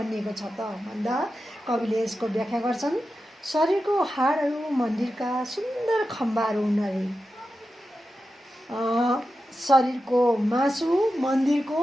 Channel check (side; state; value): both; normal; correlation 0.91